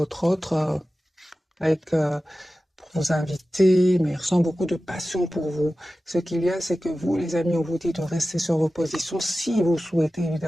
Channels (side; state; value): both; normal; correlation 0.95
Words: autre, avec pour vous inviter, mais il ressent beaucoup de passion pour vous. Ce qu'il y a, c'est que vous, les amis, on vous dit de rester sur vos positions si vous souhaitez